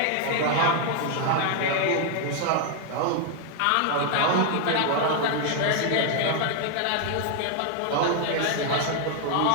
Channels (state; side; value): different; both; correlation 0.00